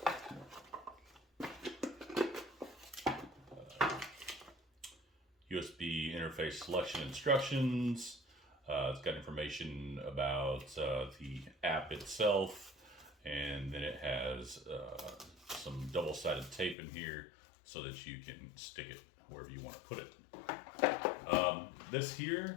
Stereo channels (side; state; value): right; drops out; at 16.8 s